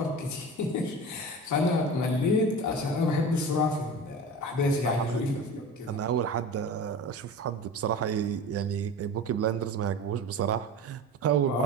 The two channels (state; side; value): normal; both; correlation 0.33